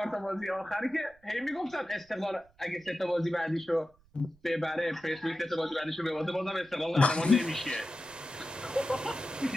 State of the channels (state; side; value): noise; right; rumble, 30 dB below the sound